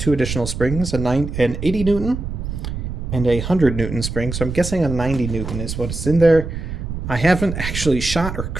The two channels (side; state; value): right; noise; rumble, 6 dB below the sound